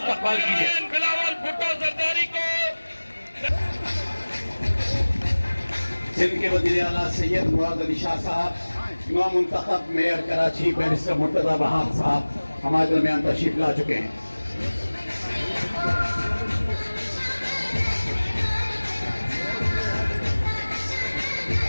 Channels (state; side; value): inverted; both; correlation -1.00